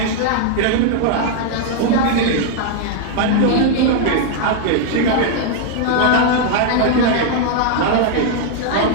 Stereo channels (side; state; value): both; different; correlation 0.00